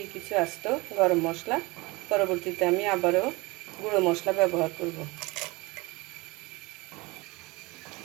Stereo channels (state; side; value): quieter; left; 23.9 dB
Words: কিছু আস্ত গরম মশলা। পরবর্তীতে আমি আবারও গুঁড়ো মশলা ব্যবহার করব।